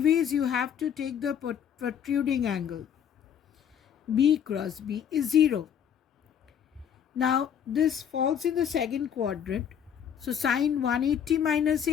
you have to take the protruding angle. B cross B is 0. Now this falls in the second quadrant. So sine 180 minus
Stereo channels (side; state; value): right; quieter; 8.6 dB